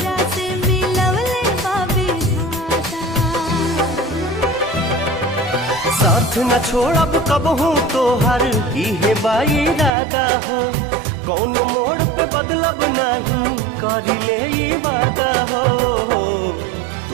साथ न छोड़ब कबहू तोहर इहे बाई इरादा हो। कौन मोड़ पे बदलब नहीं करिले ई वादा हो।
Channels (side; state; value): left; drops out; at 9.9 s